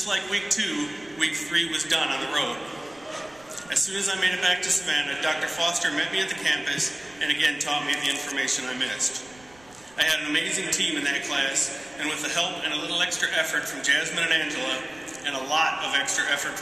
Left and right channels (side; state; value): right; noise; rumble, 27 dB below the sound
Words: like week 2, week 3 was done on the road. As soon as I made it back to Savannah, Dr. Foster met me at the campus and again taught me the information I missed. I had an amazing team in that class, and with the help and a little extra effort from Jasmine and Angela, and a lot of extra effort